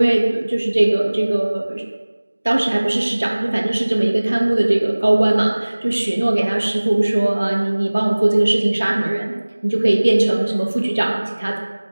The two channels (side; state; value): both; inverted; correlation -1.00